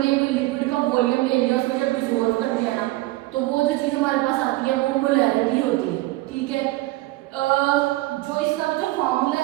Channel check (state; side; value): quieter; left; 19.3 dB